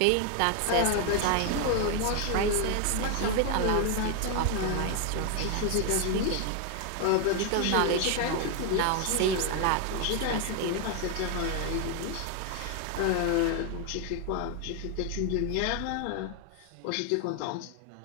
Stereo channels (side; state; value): both; different; correlation 0.00